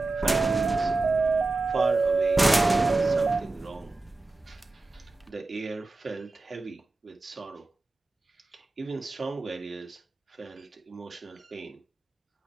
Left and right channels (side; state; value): left; quieter; 3.3 dB